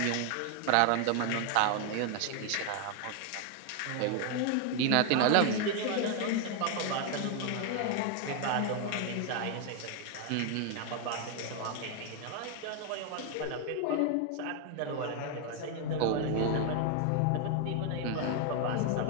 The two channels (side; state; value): both; different; correlation 0.00